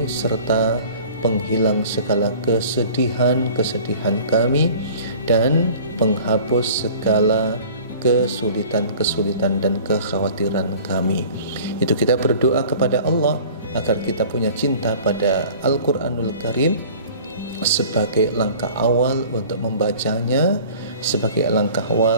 serta penghilang segala kesedihan kami, dan penghapus segala kesulitan dan kekhawatiran kami. Itu kita berdoa kepada Allah agar kita punya cinta pada Al-Quranul Karim sebagai langkah awal untuk membacanya, sebagai langkah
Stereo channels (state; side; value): inverted; both; correlation -0.45